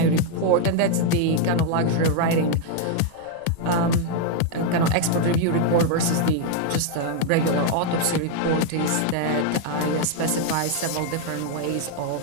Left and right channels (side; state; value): both; different; correlation 0.01